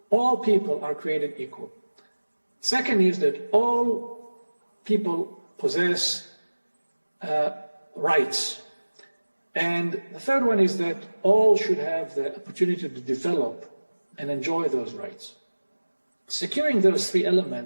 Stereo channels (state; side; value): inverted; both; correlation -1.00